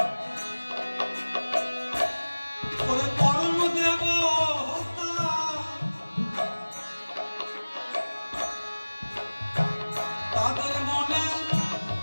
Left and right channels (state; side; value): inverted; both; correlation -1.00